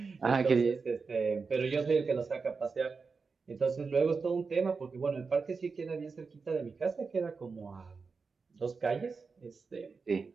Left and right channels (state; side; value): quieter; left; 4.8 dB